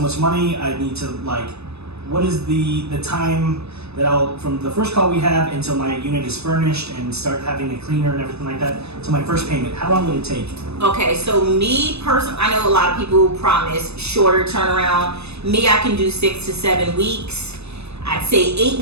much money. I need to like, what is the time that from the first call we have until my unit is furnished and start having a cleaner and everything like that to my first payment? How long would it take? Okay, so me personally, I know a lot of people promise shorter turnaround. Me, I can do 6 to 7 weeks. I'd say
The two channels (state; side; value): late; left; 0.79 ms